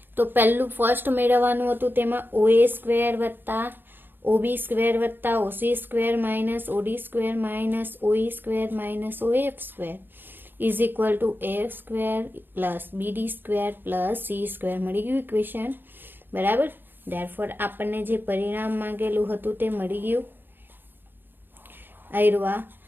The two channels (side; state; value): left; late; 0.097 ms